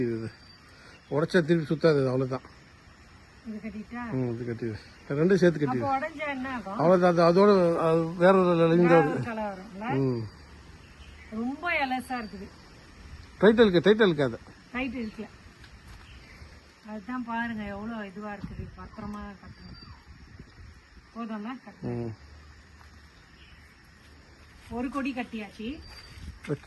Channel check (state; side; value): identical; both; correlation 1.00